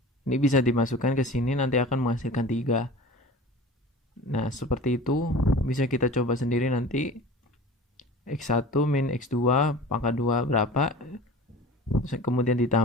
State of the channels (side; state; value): both; normal; correlation 0.39